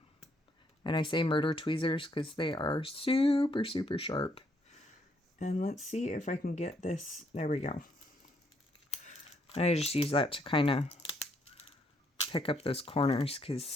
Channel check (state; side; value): normal; both; correlation 0.71